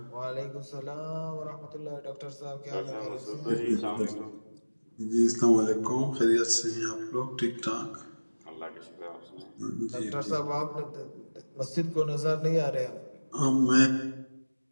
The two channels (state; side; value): inverted; both; correlation -1.00